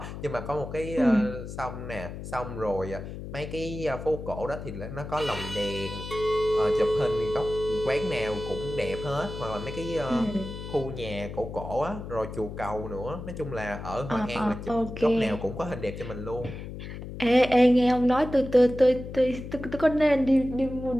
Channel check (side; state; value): left; noise; hum, 9 dB below the sound